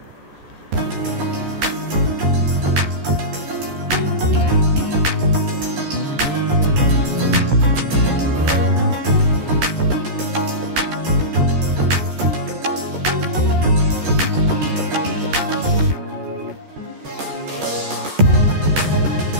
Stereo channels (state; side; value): late; left; 14 ms